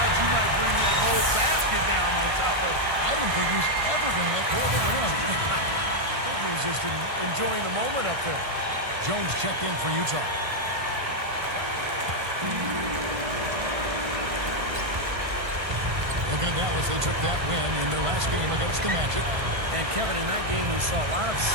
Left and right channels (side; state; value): left; late; 1.6 ms